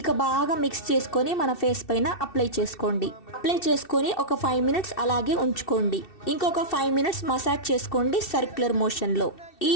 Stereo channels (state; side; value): late; right; 2.7 ms